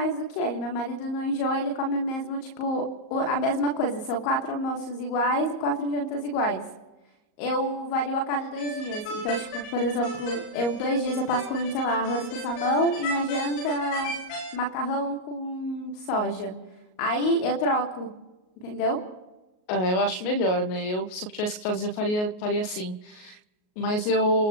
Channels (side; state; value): right; late; 38 ms